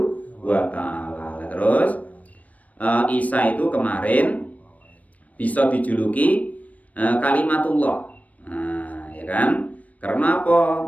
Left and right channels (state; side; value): late; right; 0.070 ms